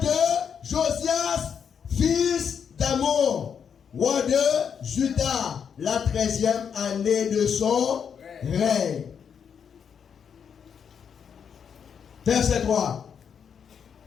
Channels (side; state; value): right; quieter; 7.3 dB